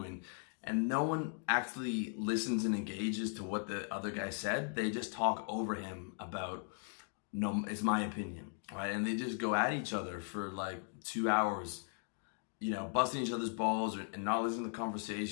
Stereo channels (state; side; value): silent; right; 52 dB below the other